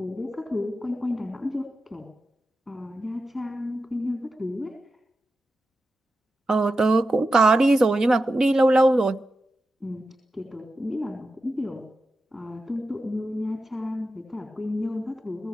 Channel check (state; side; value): normal; both; correlation 0.91